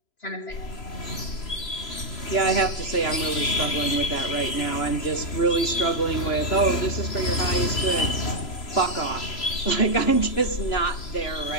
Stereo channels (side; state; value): right; late; 3.0 ms